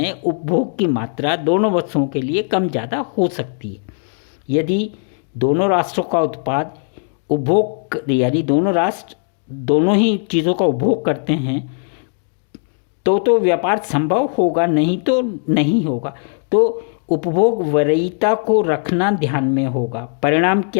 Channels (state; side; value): silent; right; 55 dB below the other